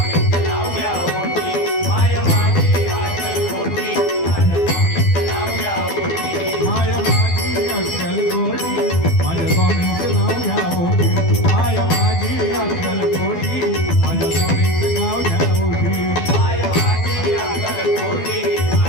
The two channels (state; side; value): late; right; 12 ms